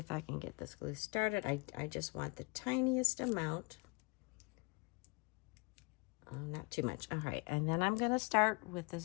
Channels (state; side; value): quieter; right; 29.7 dB